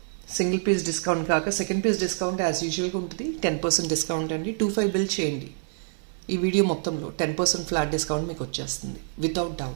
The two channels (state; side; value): silent; left; digital silence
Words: single piece discount కాక సెకండ్ పీస్ డిస్కౌంట్ యాజ్ యూజువల్గా ఉంటుంది. 10% డిస్కౌంట్ అండి. 25 బిల్ చేయండి. ఈ వీడియో మొత్తంలో 10% ఫ్లాట్ డిస్కౌంట్ మీకు వచ్చేస్తుంది without